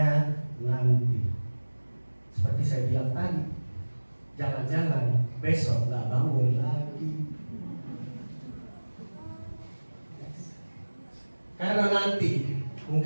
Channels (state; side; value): inverted; both; correlation -1.00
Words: nanti. Seperti saya bilang tadi, jangan-jangan besok gak bangun lagi. Karena nanti